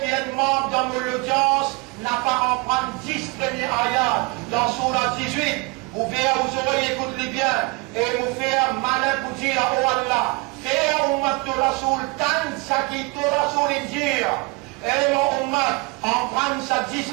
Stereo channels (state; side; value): quieter; left; 27.1 dB